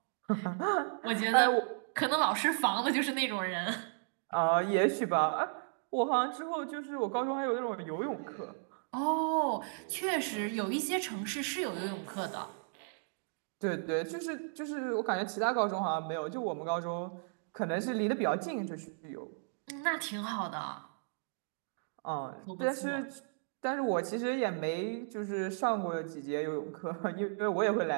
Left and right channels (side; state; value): left; silent; digital silence